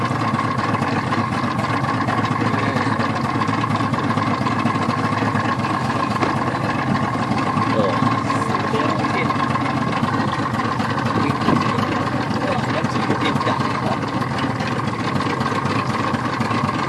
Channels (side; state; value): both; identical; correlation 1.00